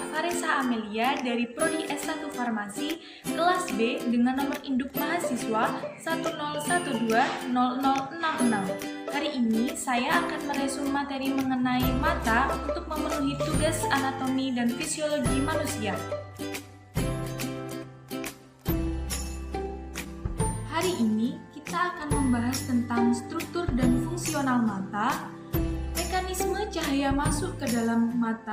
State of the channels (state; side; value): identical; both; correlation 1.00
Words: Farisa Amelia dari Prodi S1 Farmasi kelas B dengan nomor induk mahasiswa 101200066. Hari ini saya akan meresum materi mengenai mata untuk memenuhi tugas anatomi dan fisiologi manusia. Hari ini kita akan membahas tentang struktur dan fungsional mata, mekanisme cahaya masuk ke dalam